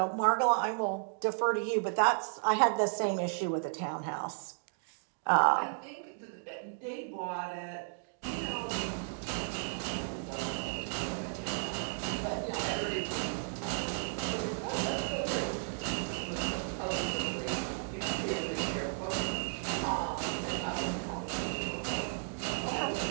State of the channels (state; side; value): silent; left; digital silence